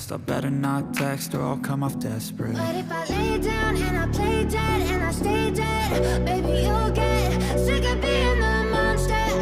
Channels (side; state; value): both; identical; correlation 1.00